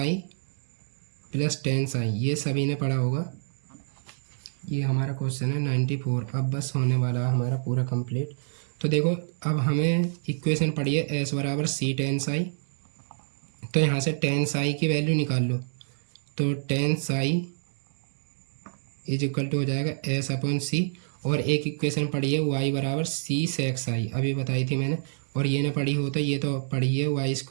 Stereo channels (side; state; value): left; silent; digital silence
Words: plus ten psi, ये सभी ने पढ़ा होगा। ये हमारा क्वेश्चन है 94। अब बस होने वाला है हमारा पूरा कंप्लीट। तो देखो अब हमें इक्वेशन पढ़ी है एस बराबर सी टेन साई, तो यहाँ से टेन साई की वैल्यू निकाल लो। तो ten psi is equal to हो जाएगा एस अपॉन सी, और एक इक्वेशन पढ़ी है वाई बराबर सी सेक साई, अभी बताई थी मैंने। और ये ना पढ़ी हो तो ये तो पढ़ी है वाई